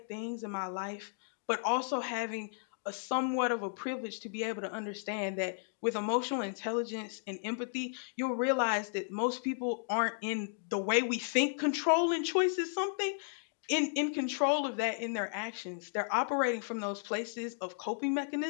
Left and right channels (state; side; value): silent; right; digital silence